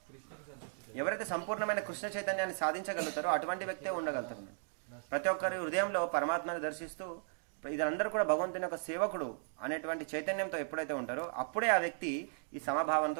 ఎవరైతే సంపూర్ణమైన కృష్ణ చైతన్యాన్ని సాధించగలుగుతారో అటువంటి వ్యక్తే ఉండగలుగుతారు. ప్రతి ఒక్కరి హృదయంలో పరమాత్మని దర్శిస్తూ ఇదందరూ కూడా భగవంతుని యొక్క సేవకుడు అనేటువంటి చైతన్యంతో ఎప్పుడైతే ఉంటారో అప్పుడే ఆ వ్యక్తి ఈ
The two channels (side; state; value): left; silent; digital silence